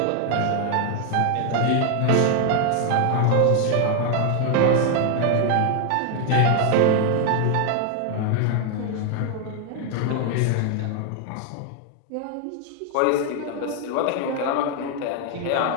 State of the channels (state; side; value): different; both; correlation 0.00